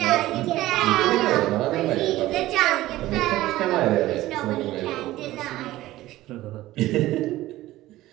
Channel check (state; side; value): quieter; left; 16.3 dB